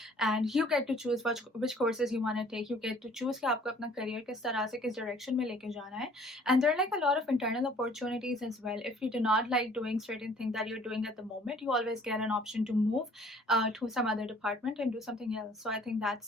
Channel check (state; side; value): normal; both; correlation 0.56